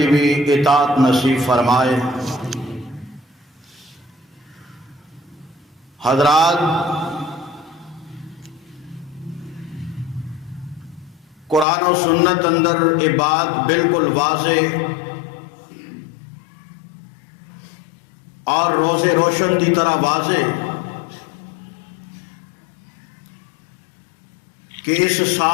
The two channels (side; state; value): right; drops out; at 11.7 s